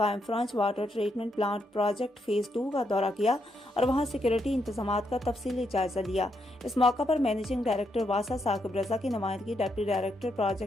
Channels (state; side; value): normal; both; correlation 0.79